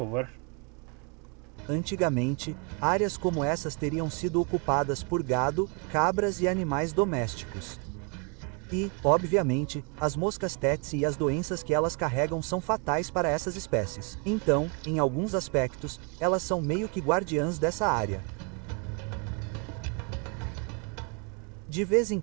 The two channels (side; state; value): left; quieter; 32.9 dB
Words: Antigamente, áreas como essas teriam sido ocupadas por gado, cabras e animais domésticos. E, obviamente, as moscas Tetsy e as doenças que elas carregam são fatais para essas espécies. Então, em alguns aspectos, elas são meio que guardiãs dessa área. De vez em